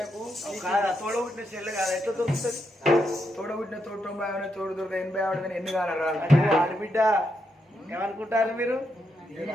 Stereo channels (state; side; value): normal; both; correlation 0.82